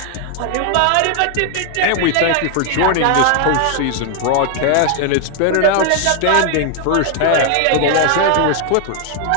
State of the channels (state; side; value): different; both; correlation 0.00